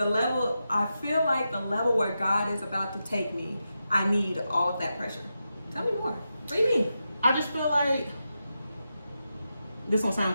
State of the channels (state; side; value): inverted; both; correlation -0.89